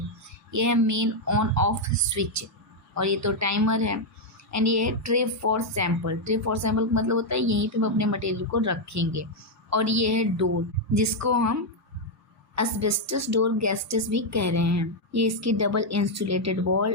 ये है मेन ऑन ऑफ स्विच, और ये तो टाइमर है। एंड ये है tray for sample. Tray for sample का मतलब होता है यहीं पे हम अपने मटेरियल को रखेंगे। और ये है डोर, जिसको हम एस्बेस्टस डोर गैस्टस भी कह रहे हैं। ये इसकी डबल इंसुलेटेड वॉल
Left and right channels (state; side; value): normal; both; correlation 0.00